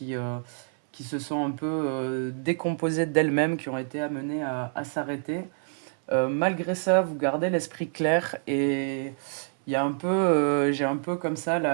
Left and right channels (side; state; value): left; silent; 60 dB below the other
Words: se sont un peu décomposées d'elles-mêmes, qui ont été amenées à s'arrêter. Malgré ça, vous gardez l'esprit clair et il y a un peu, j'ai un peu comme ça